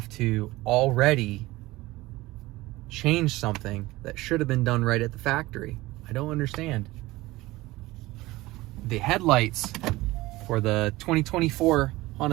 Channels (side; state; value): left; quieter; 19.2 dB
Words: to already change something that should have been done right at the factory. I don't understand. The headlights for the 2024